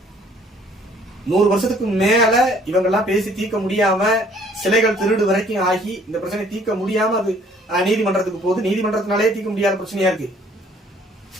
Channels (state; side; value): normal; both; correlation 0.59